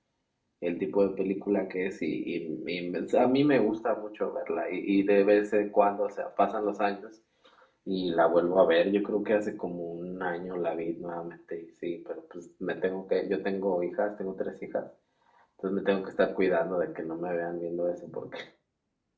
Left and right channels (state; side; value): identical; both; correlation 1.00